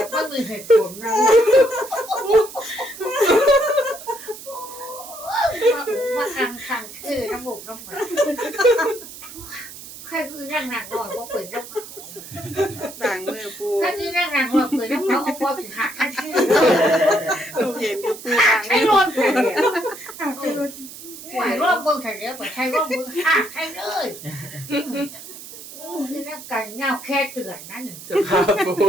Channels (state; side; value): noise; right; hiss, 14 dB below the sound